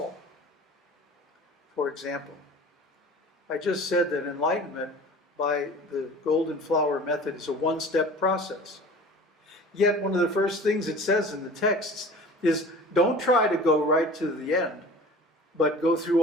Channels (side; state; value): both; normal; correlation 0.41